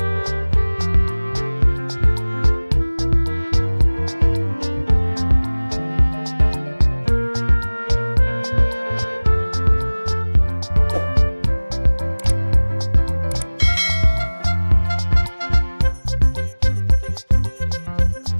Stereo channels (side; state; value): both; inverted; correlation -1.00